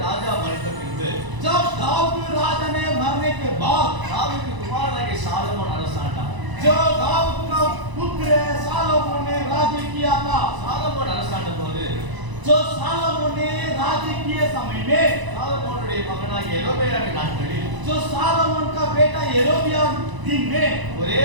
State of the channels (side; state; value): left; late; 1.0 ms